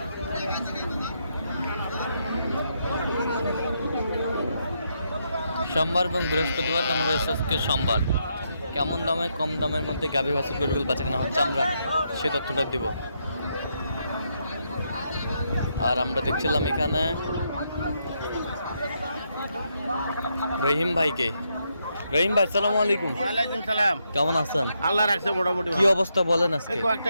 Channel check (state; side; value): inverted; both; correlation -0.79